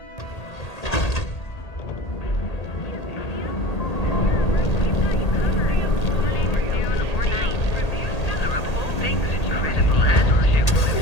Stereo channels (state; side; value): late; right; 1.8 ms